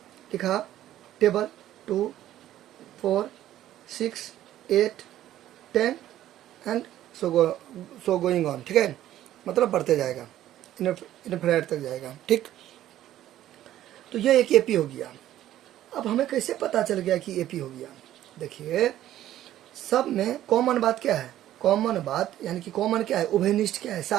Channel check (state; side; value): quieter; left; 12.9 dB